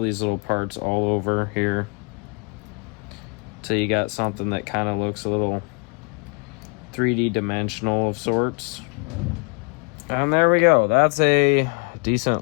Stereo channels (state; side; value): quieter; right; 32.7 dB